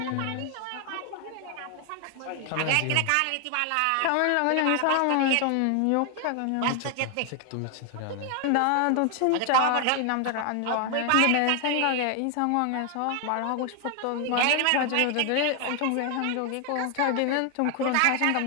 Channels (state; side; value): different; both; correlation 0.00